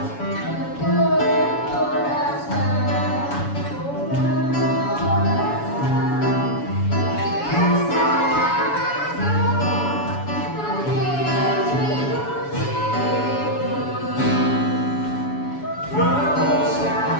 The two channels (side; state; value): right; late; 7.1 ms